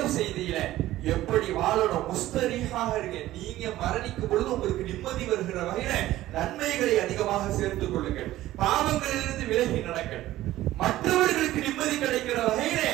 செய்தியில எப்படி வாழணும், முஸ்தரிஹாக இருங்க. நீங்க மரணிக்கும் பொழுது உங்களுக்கு நிம்மதி வருகிற வகையில நன்மைகளை அதிகமாக சேர்த்துக் கொள்ளுங்கள். பாவங்களிலிருந்து விலகி நடங்கள். மற்றவர்களுக்கு நிம்மதி கிடைக்கிற வகையில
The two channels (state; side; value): quieter; left; 15.2 dB